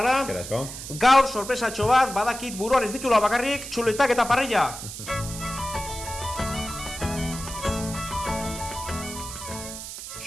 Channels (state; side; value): noise; right; hiss, 10 dB below the sound